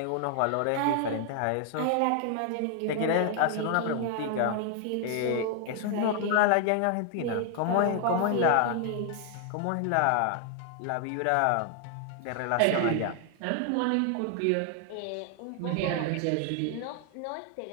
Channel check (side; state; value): both; different; correlation 0.00